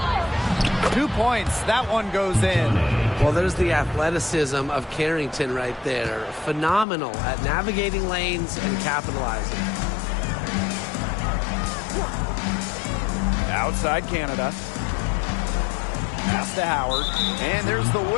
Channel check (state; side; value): drops out; right; at 6.9 s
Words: 2 points. That one goes in. Well, there's the athleticism of Carrington right there. Phenomenal at navigating lanes and capitalizing. Outside Canada. Pass to Howard. And there's the